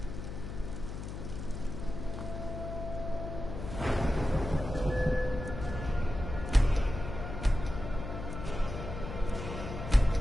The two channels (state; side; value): noise; left; hum, 7 dB below the sound